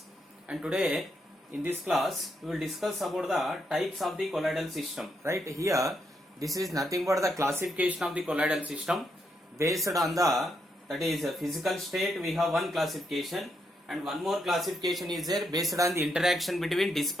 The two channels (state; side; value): normal; both; correlation 0.79